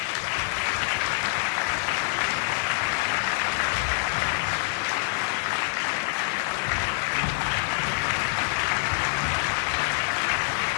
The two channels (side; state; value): right; silent; digital silence